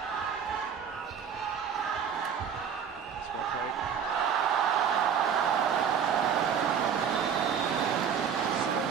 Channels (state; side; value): quieter; left; 7.5 dB